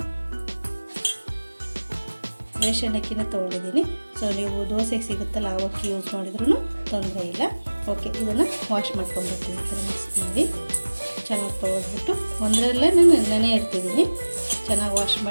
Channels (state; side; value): inverted; both; correlation -1.00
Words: ರೇಷನ್ ಅಕ್ಕಿನ ತೊಗೊಂಡಿದ್ದೀನಿ. ಸೊ ನೀವು ದೋಸೆಗೆ ಸಿಗುತ್ತಲ್ಲ ಆ ಅಕ್ಕಿ ಯೂಸ್ ಮಾಡಿದ್ರೂ ತೊಂದರೆ ಇಲ್ಲ. ಓಕೆ, ಇದನ್ನು ವಾಶ್ ಮಾಡ್ಕೊಂಡ್ಬರ್ತೀನಿ. ಈ ಥರ ಮಿಕ್ಸ್ ಮಾಡಿ ಚೆನ್ನಾಗಿ ತೊಳೆದ್ಬಿಟ್ಟು ಒಂದರಲ್ಲೇ ನಾನು ನೆನೆ ಇಡ್ತಿದ್ದೀನಿ. ಚೆನ್ನಾಗಿ ವಾಶ್